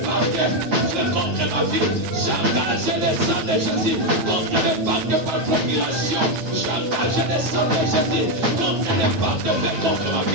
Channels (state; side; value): late; left; 9.3 ms